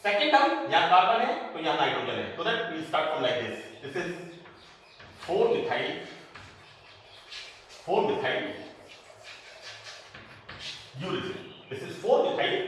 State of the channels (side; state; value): both; identical; correlation 1.00